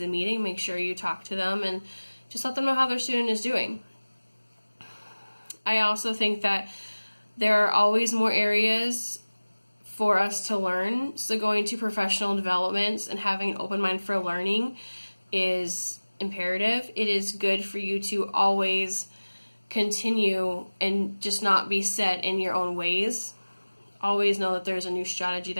a meeting, make sure you talk to them and just let them know how their student is doing. I also think that there are always more areas for us to learn. So going to professional developments and having an open mind for learning is imperative. It is good for you to always continue and just not be set in your own ways. Always know that there's a new strategy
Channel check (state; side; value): inverted; both; correlation -1.00